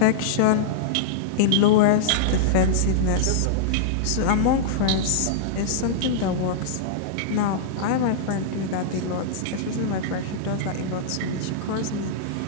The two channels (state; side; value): different; both; correlation -0.02